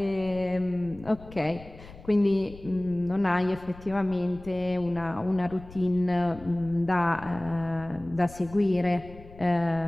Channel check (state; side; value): noise; left; rumble, 18 dB below the sound